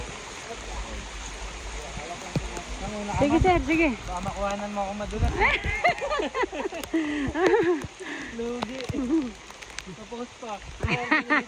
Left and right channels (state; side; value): identical; both; correlation 1.00